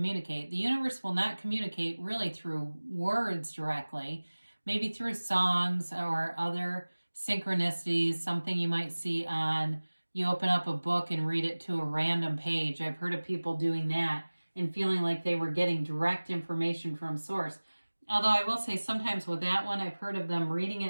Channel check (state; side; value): inverted; both; correlation -1.00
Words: The universe will not communicate really through words directly, maybe through songs or other synchronicities, something you might see you open up a book and read it to a random page. I've heard of people doing that and feeling like they were getting direct information from source. Although I will say sometimes with that one, I've heard of them reading